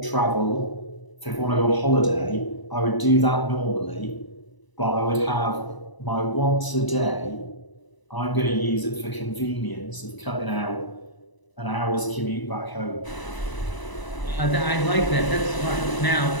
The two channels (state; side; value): late; right; 1.0 ms